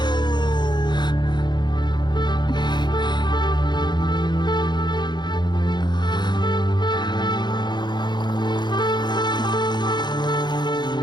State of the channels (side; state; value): right; late; 0.21 ms